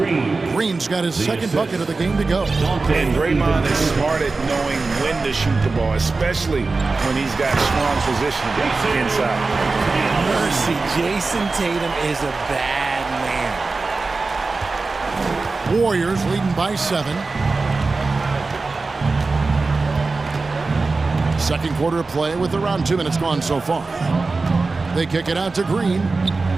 Green's got his second bucket of the game to go. And Draymond is smart at knowing when to shoot the ball, especially when he's got strong positioning inside. Mercy, Jason Tatum is a bad man. Warriors leading by 7. Second quarter of play with around 2 minutes gone so far. They kick it out to Green.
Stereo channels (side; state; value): left; quieter; 3.8 dB